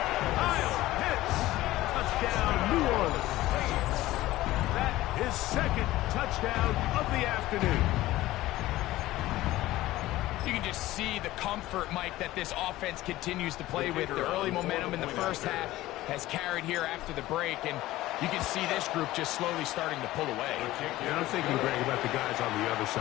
Kyle Pitts. Touchdown, New Orleans. That is 2nd touchdown of the afternoon. You can just see the comfort, Mike, that this offense continues to play with. The early momentum in the first half has carried here after the break, and you can see this group just slowly starting to pull away. Yeah, I'm thinking, Greg, about the guys on the other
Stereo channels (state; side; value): quieter; right; 16.6 dB